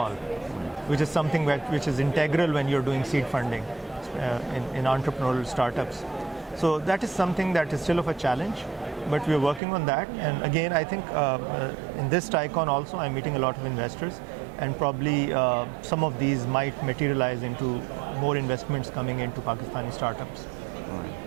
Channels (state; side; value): drops out; left; at 9.6 s